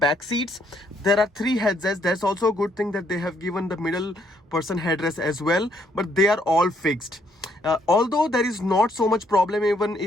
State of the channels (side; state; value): both; normal; correlation 0.70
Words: seats, there are 3 headrests. That's also a good thing that they have given the middle person headrest as well, but they are all fixed. Although there is not so much problem, even